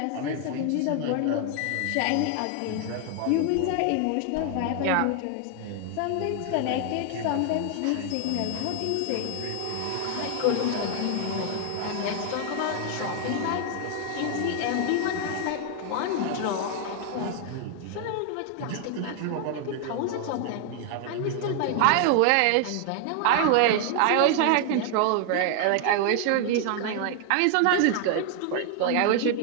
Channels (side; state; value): both; different; correlation 0.00